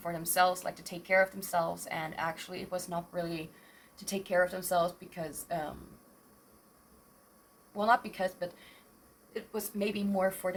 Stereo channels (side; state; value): both; identical; correlation 1.00